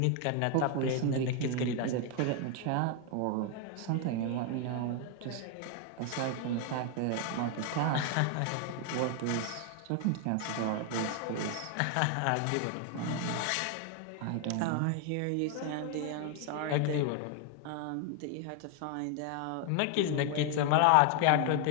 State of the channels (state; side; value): different; both; correlation 0.00